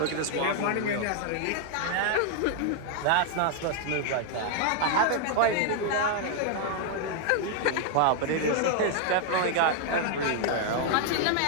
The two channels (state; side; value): different; both; correlation 0.00